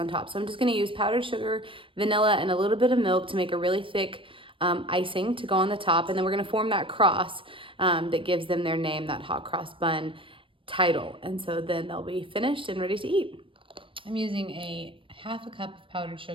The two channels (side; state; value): left; late; 0.25 ms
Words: top. So I'm just gonna use powdered sugar, vanilla, and a little bit of milk to make a really thick icing to go on the top, and then we're gonna form that cross that gives them their name, that hot cross bun title. And so then they'll be finished and ready to eat. I'm using a half a cup of powdered